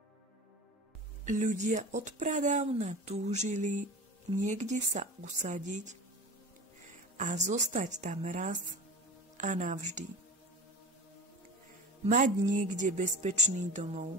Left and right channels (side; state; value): both; normal; correlation 0.33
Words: Ľudia odpradávna túžili niekde sa usadiť a zostať tam raz a navždy. Mať niekde bezpečný domov.